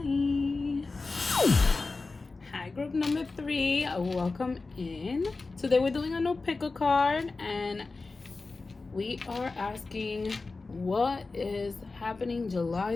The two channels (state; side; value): quieter; right; 3.8 dB